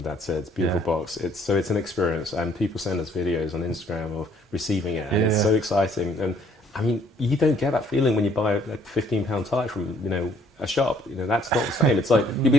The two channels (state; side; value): normal; both; correlation 0.63